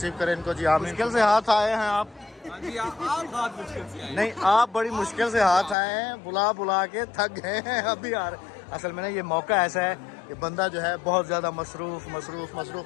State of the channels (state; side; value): drops out; right; at 5.8 s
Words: करे इनको जी। आप मुश्किल से हाथ आए हैं आप? नहीं, आप बड़ी मुश्किल से हाथ आए हैं, बुला बुला के थक गए हैं अभी आ रहे। असल में ना ये मौका ऐसा है कि बंदा जो है बहुत ज़्यादा मसरूफ़।